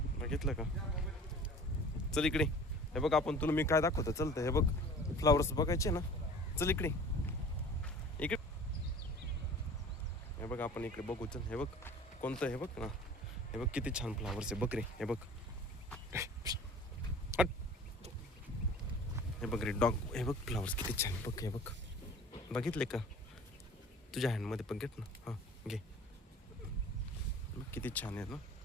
बघितलं का? चल इकडे. हे बघ आपण तुला मी काय दाखवतो चलतं. हे बघ फ्लावर्स बघायचे ना. चल इकडे इकडे. हे बघ आपण इकडे बघू. चल हे बघ कोणतं. हे बघ ना. हे बघ किती छान फ्लावर्स आहे बघ रे. हे बघ. हे बघ रे डॉग. हे बघ फ्लावर्स किती छान बघ. हे बघ बघितले का? तुझ्या हँडमध्ये पण घेत ना. हां घे. किती छान आहेत ना.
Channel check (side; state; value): both; normal; correlation 0.44